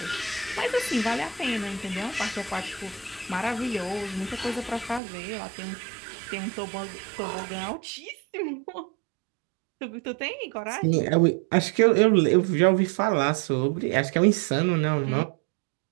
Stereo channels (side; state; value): left; drops out; at 5.0 s